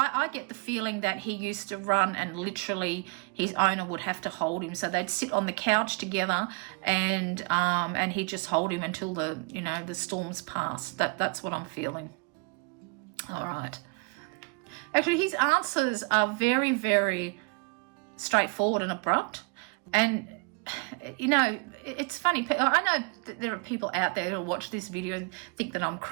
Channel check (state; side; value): quieter; left; 33.1 dB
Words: get the feeling that he used to run, and literally his owner would have to hold him. So they'd sit on the couch together, and he'd just hold him until the storms pass. That's what I'm feeling. All right. Actually, his answers are very, very straightforward and abrupt. And you know, it's funny. I know that there are people out there who watch this video and think that I'm